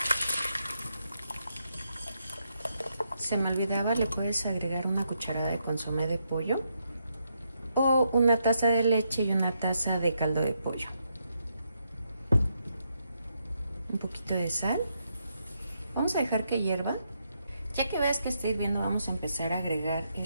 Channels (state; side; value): inverted; both; correlation -0.79